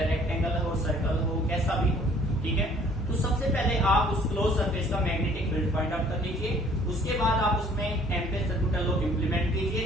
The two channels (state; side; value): normal; both; correlation 0.57